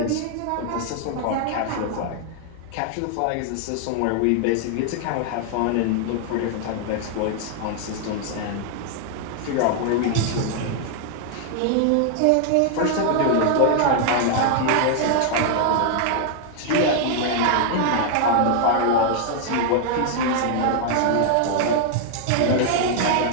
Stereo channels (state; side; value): different; both; correlation 0.00